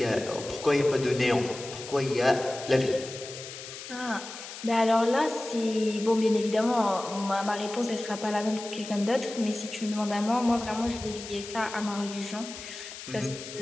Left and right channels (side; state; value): left; noise; hiss, 12 dB below the sound